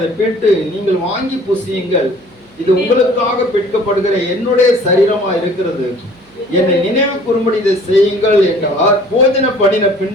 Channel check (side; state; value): right; noise; hum, 29 dB below the sound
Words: பெற்று நீங்கள் வாங்கி புசியுங்கள், இது உங்களுக்காக பெற்கப்படுகிற என்னுடைய சரீரமா இருக்கிறது, என்னை நினைவு கூறும்படி இதை செய்யுங்கள் என்றார். போஜன பண்ணின